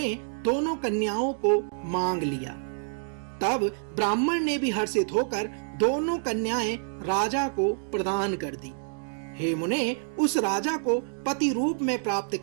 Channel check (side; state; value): left; silent; digital silence